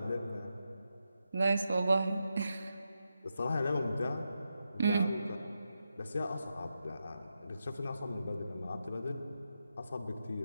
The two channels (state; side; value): inverted; both; correlation -0.87